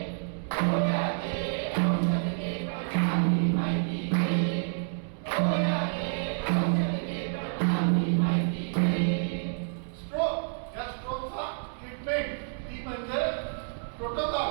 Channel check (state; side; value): silent; left; 59 dB below the other